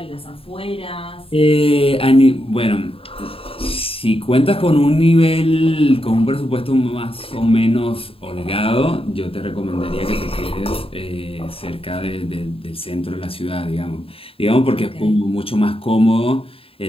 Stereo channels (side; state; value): right; late; 0.27 ms